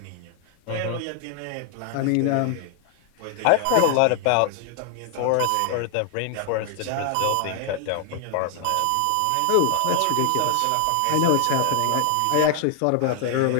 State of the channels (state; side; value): different; both; correlation 0.00